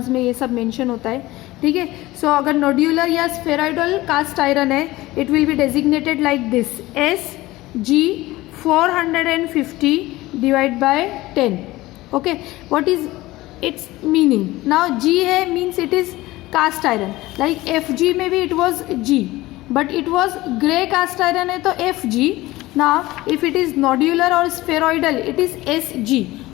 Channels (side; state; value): right; quieter; 18.5 dB